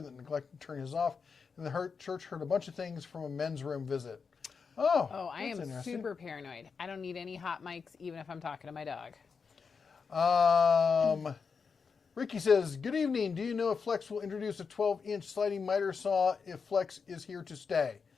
that neglected to turn his off, and the church heard a bunch of things from a men's room visit. Oh, I am super paranoid. I don't need any hot mics, even if I'm talking to my dog. Ricky says, good evening. Do you know if Flex will introduce a 12-inch sliding miter saw if Flex is here to stay?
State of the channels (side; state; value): right; quieter; 5.5 dB